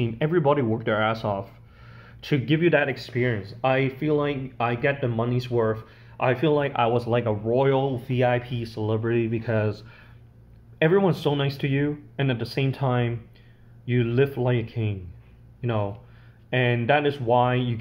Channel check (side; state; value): both; identical; correlation 1.00